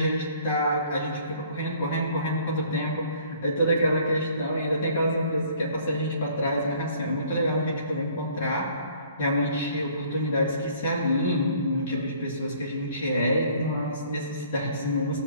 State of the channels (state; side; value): inverted; both; correlation -0.57